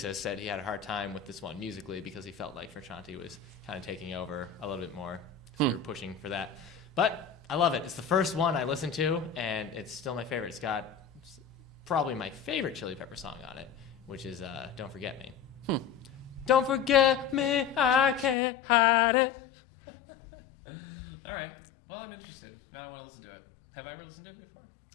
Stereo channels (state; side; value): drops out; right; at 18.4 s